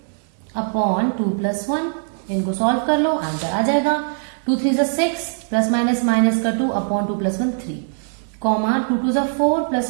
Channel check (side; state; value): left; silent; 65 dB below the other